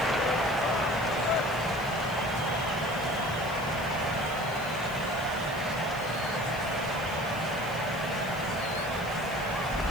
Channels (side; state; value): left; noise; hiss, 19 dB below the sound